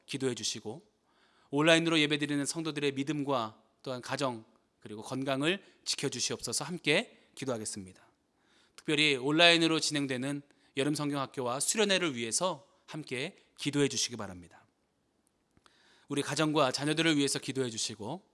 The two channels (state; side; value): identical; both; correlation 1.00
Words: 기도해 주시고 온라인으로 예배드리는 성도들의 믿음과 또한 가정 그리고 건강을 지켜주시옵소서. 함께 기도하겠습니다. 특별히 온라인으로 진행되는 여름 성경학교와 수련회를 위해서 함께 기도해 주시기 바랍니다. 우리 가정과 자녀들을 위해서 기도해 주시고